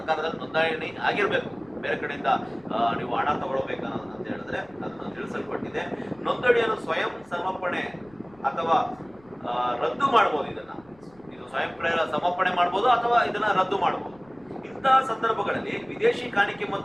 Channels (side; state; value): left; noise; rumble, 28 dB below the sound